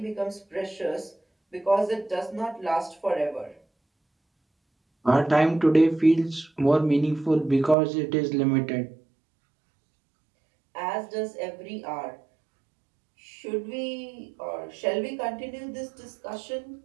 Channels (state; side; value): drops out; left; at 7.8 s